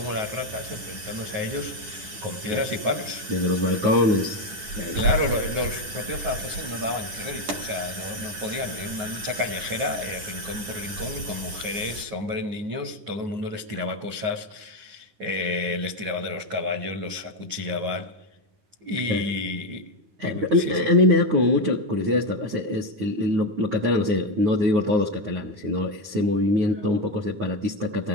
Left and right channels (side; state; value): left; late; 10 ms